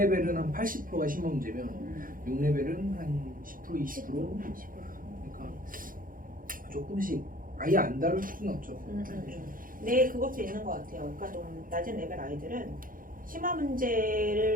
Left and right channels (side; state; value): left; late; 0.40 ms